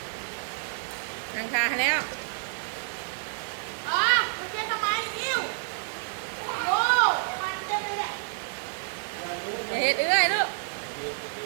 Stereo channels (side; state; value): left; silent; digital silence